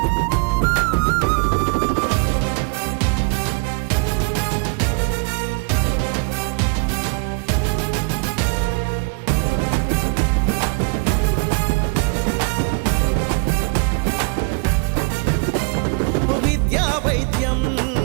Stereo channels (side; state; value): left; quieter; 34.9 dB